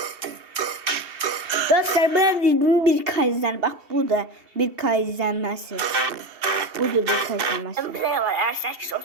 Dostlar buna dediğim bir kayızlar. Bak bu da bir kayızlanması. Bu da bir kayızlanması. Bir ne var? R8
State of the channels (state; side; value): late; left; 2.8 ms